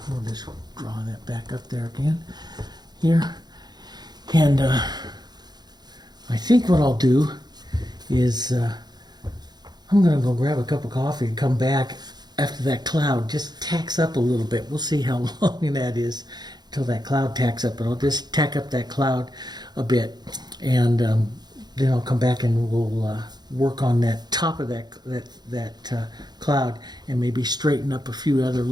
we'll just draw that back up there again, here. And I think what I'll do is I'm going to go grab a cup of coffee and come back after that cloud just tacks up a little bit. We'll see how long that is until that cloud tacks up, but I'll just tack up that cloud a bit, and then I'll come back and we'll work on that top of that cloud, and maybe straighten up a few other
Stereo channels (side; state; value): left; late; 0.20 ms